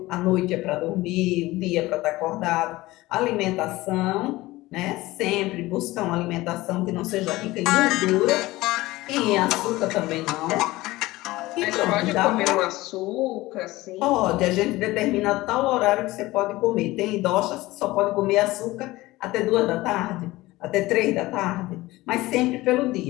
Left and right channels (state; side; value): quieter; right; 18.9 dB